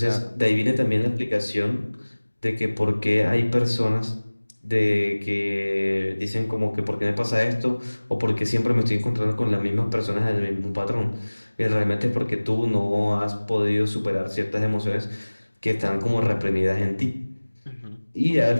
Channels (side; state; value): both; inverted; correlation -1.00